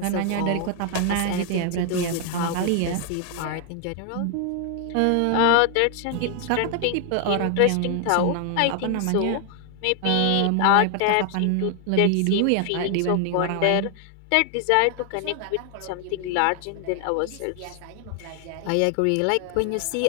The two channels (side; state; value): both; different; correlation 0.00